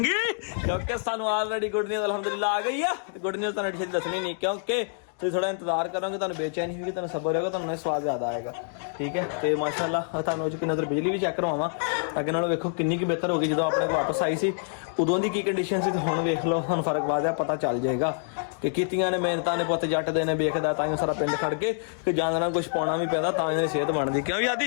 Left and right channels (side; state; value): right; silent; digital silence